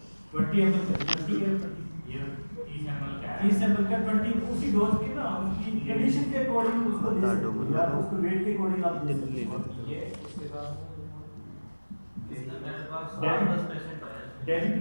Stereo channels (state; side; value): inverted; both; correlation -1.00